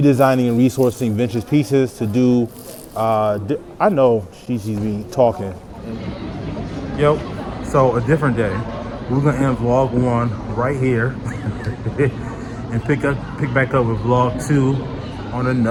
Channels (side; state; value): both; identical; correlation 1.00